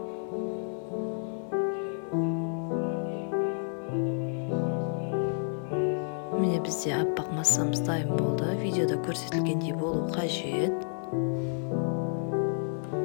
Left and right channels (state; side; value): silent; right; 58 dB below the other